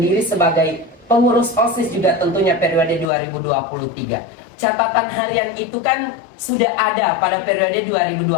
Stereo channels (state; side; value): drops out; right; at 3.1 s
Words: sebagai pengurus OSIS juga tentunya periode 2023. Catatan harian itu kan sudah ada pada periode